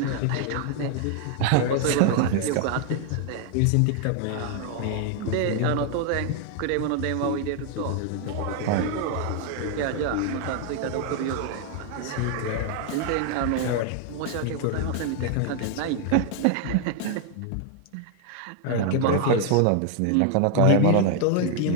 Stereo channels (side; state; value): both; different; correlation 0.00